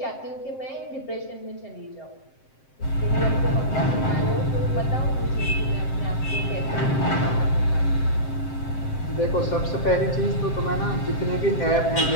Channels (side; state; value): right; late; 7.6 ms